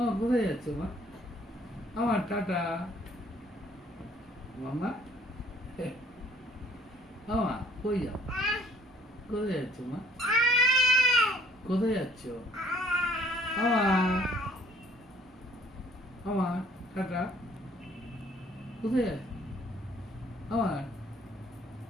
কোথায় যাচ্ছ মা? আমার টাটা মামা। আমা কই যাও? কোথায় যাচ্ছ মা? কোথায় যাচ্ছ? আমা আমার টাটা কোথায় যাচ্ছ? আমার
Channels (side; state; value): both; normal; correlation 0.58